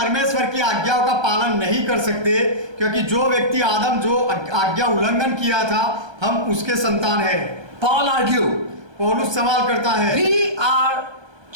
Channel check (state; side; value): late; left; 1.3 ms